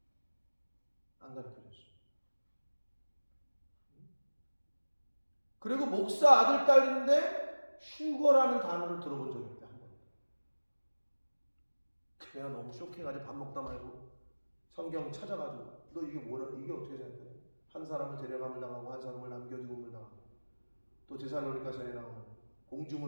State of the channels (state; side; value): inverted; both; correlation -1.00